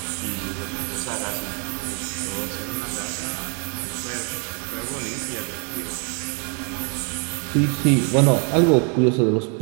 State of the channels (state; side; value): quieter; left; 37.6 dB